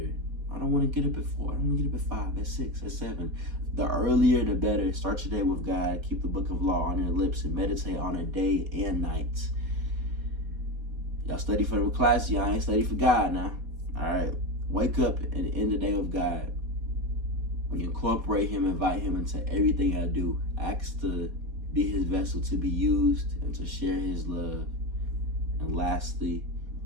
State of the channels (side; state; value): left; late; 4.2 ms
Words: I don't want to get up at 4. I don't want to get up at 5, at 6, at 7. The earlier the better. Start your day with God. Keep the book of law on your lips and meditate on it day and night. Y'all study for the class. Y'all ain't study for God now. All right. Wake up and end the day with God. When you incorporate Him, invite Him into everything I do. Ask to be His vessel to be used and to share His love. And lastly,